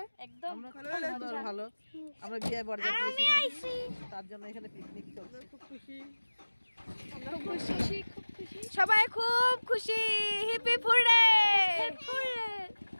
একদম ভালো। আমরা বিয়ে বরযাত্রী এসেছি, তার জন্য এখানে পিকনিক চলছে। খুব খুশি, সবাই খুব খুশি। হিপি ফুড়ে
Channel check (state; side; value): inverted; both; correlation -1.00